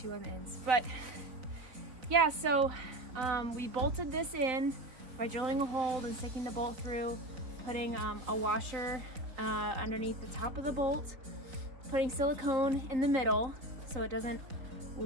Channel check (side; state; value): left; late; 4.0 ms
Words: on the ends. But yeah, so we bolted this in by drilling a hole and sticking the bolt through, putting a washer underneath the top of the bolt, putting silicone in the middle so it doesn't